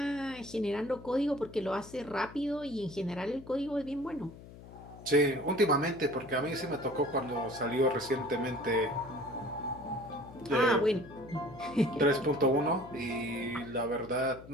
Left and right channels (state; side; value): noise; left; hum, 17 dB below the sound